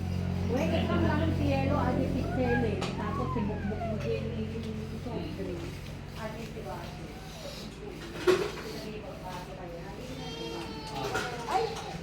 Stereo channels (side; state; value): both; identical; correlation 1.00